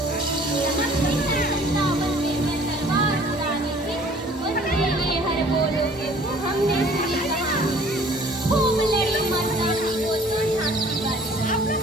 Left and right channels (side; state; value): both; normal; correlation 0.53